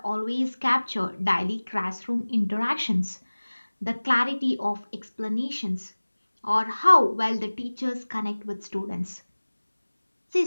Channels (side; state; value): both; inverted; correlation -1.00